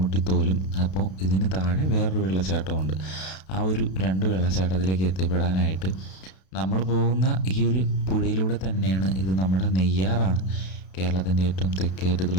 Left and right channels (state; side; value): late; right; 32 ms